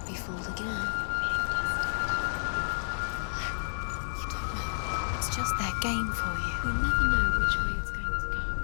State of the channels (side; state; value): right; silent; digital silence